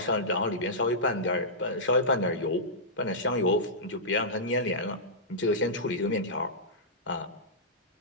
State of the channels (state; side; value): normal; both; correlation -0.15